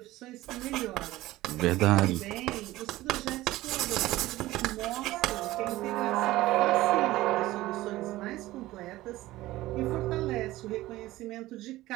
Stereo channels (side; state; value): left; quieter; 17.1 dB